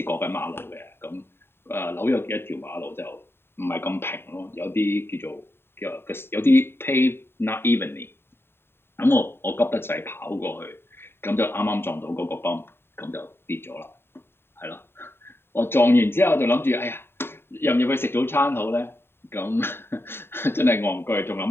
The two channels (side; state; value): right; late; 0.11 ms